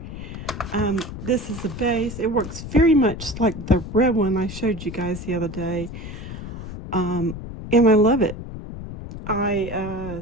This is the base. It works very much like the red one I showed you guys the other day. And I love it. I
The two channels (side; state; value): left; noise; rumble, 10 dB below the sound